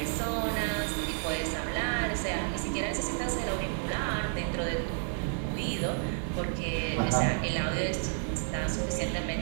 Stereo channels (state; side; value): silent; left; digital silence